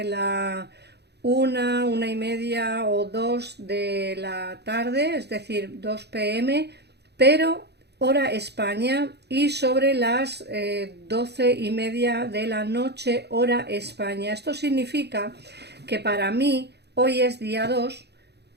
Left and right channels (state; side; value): late; left; 0.48 ms